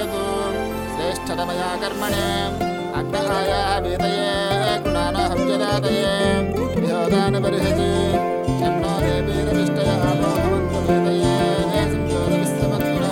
శ్రేష్ఠతమయా కర్మణే అగ్నహాయ వేదయే గుణానహం జనాదయే విహోదాన బర్హతి షణ్ణో దేవీరవిష్టయ భవంతు వేదయే సంజోత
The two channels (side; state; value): both; identical; correlation 1.00